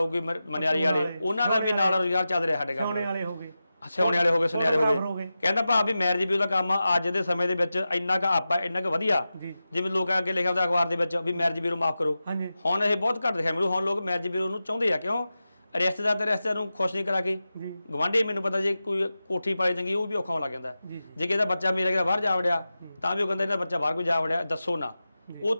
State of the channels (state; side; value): inverted; both; correlation -0.93